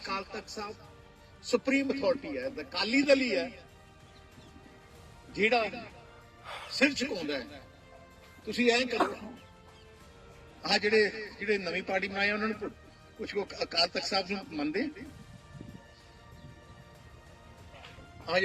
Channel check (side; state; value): both; identical; correlation 1.00